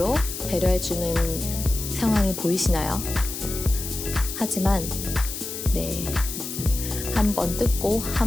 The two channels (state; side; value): noise; left; hiss, 7 dB below the sound